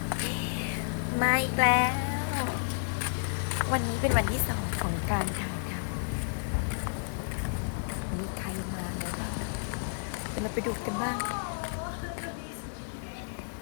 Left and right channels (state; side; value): silent; right; digital silence